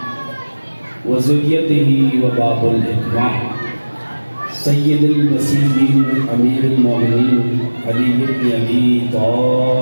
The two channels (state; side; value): inverted; both; correlation -1.00